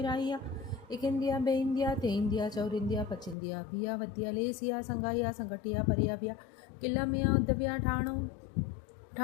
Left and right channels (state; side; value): drops out; right; at 3.4 s